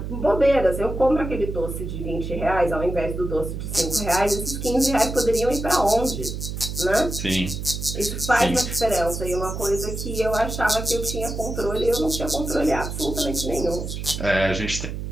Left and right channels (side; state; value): right; noise; hum, 6 dB below the sound